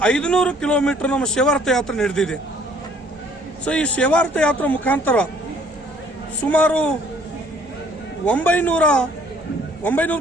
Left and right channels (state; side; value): normal; both; correlation 0.59